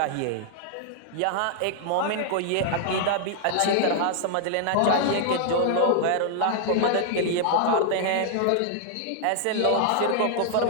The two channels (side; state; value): both; different; correlation -0.01